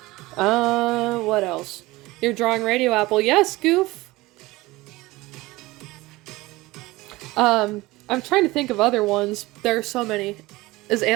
What else? You're drawing RadioApple. Yes, Goof. I'm trying to think of other ones. There are so many. Is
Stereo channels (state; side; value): quieter; left; 20.1 dB